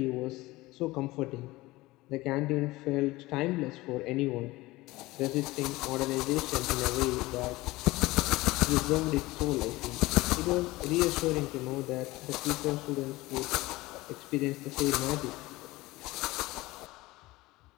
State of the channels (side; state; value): right; quieter; 19.8 dB